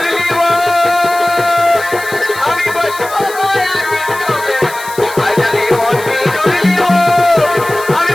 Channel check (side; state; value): left; noise; hiss, 15 dB below the sound